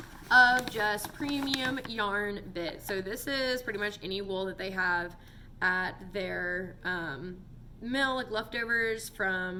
of just premium yarn bit. So this is pretty much any wool that they have at their mill, like leftovers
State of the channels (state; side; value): identical; both; correlation 1.00